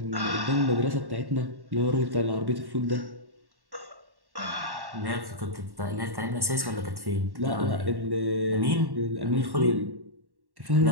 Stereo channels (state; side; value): late; left; 1.1 ms